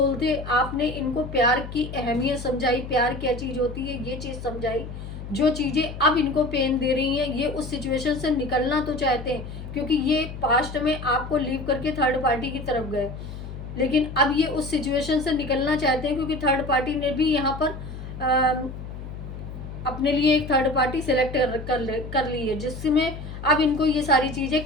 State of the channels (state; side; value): noise; left; hum, 10 dB below the sound